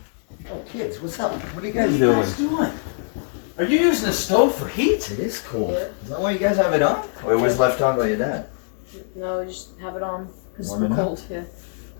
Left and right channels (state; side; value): silent; right; digital silence